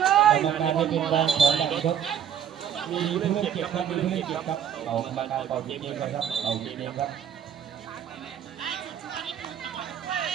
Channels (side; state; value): left; quieter; 8.8 dB